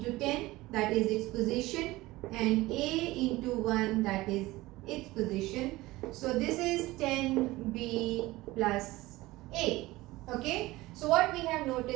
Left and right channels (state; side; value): quieter; left; 19.1 dB